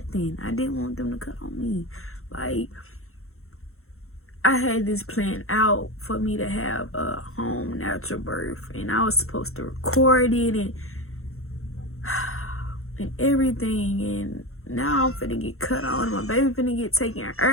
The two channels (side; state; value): right; late; 0.63 ms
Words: I didn't want them to cut on me. Like, I had this plan out for me to have a home natural birth, and I was supposed to record it and everything, and now I'm finna get cut on. My baby finna get taken